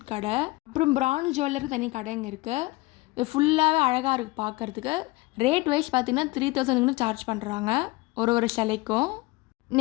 கடை. அப்புறம் பிரான்ஸ் ஜுவல்லருக்கு தனி கடைங்க இருக்குது. இது ஃபுல்லாகவே அழகாக இருக்குது பார்க்குறதுக்கு. ரேட் வைஸ் பார்த்திங்கன்னா 3000 சார்ஜ் பண்ணுறாங்க ஒரு சிலைக்கும்.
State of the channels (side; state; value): right; quieter; 21.8 dB